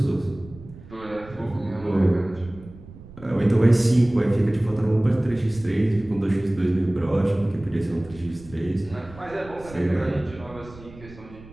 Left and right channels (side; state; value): right; noise; rumble, 19 dB below the sound